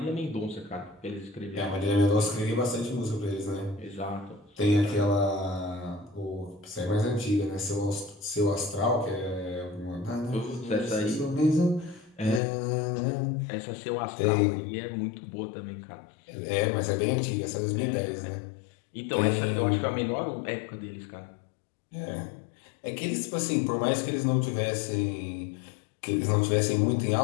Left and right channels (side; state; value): right; drops out; at 12.4 s